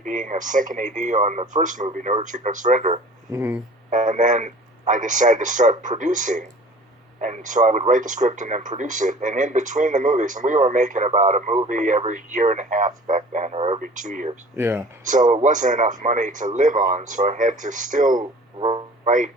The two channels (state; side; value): normal; both; correlation 0.46